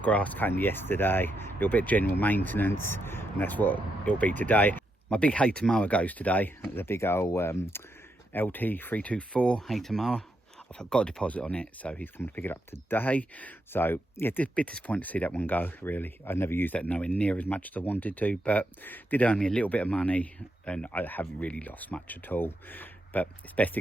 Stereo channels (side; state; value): both; normal; correlation 0.82